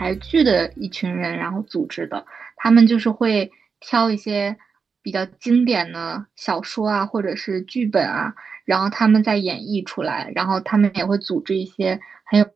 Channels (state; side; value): quieter; left; 5.5 dB